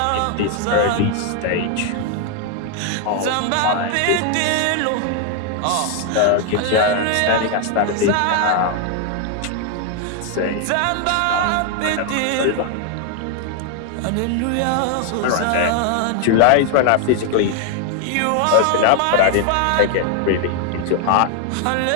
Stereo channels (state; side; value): different; both; correlation 0.00